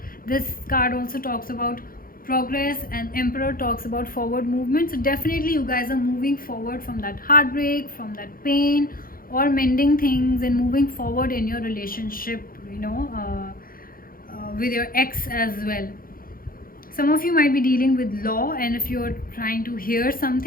this card also talks about progress, and Emperor talks about forward movement. So definitely you guys are moving forward from that heartbreak, from that pain, or mending things and moving forward in your relationship, with your ex as well. Some of you might be dealing with law, and if you're trying to hear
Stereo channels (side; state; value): right; late; 0.42 ms